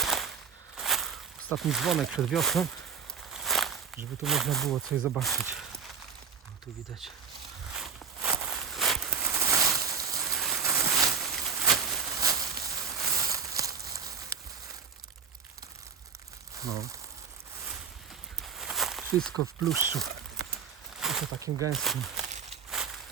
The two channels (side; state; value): left; quieter; 6.3 dB